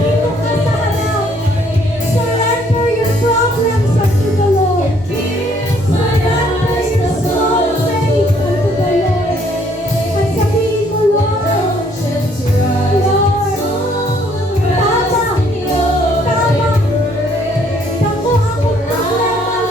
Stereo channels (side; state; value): both; normal; correlation 0.65